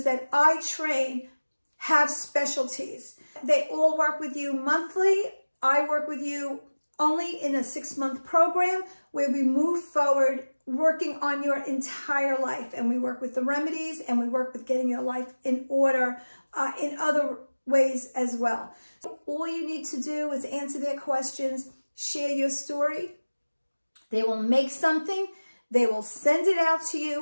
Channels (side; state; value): both; inverted; correlation -1.00